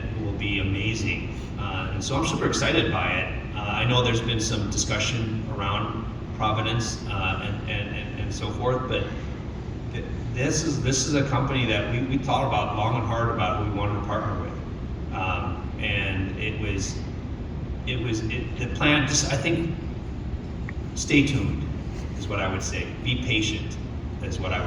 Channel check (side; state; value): both; identical; correlation 1.00